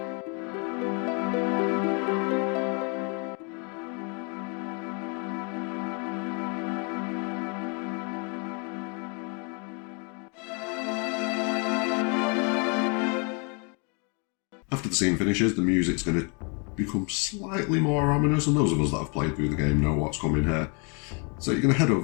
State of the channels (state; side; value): quieter; right; 34.9 dB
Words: After the scene finishes, the music's going to become slightly more ominous, and those of us that have played through the game know what's coming here. So you're going to head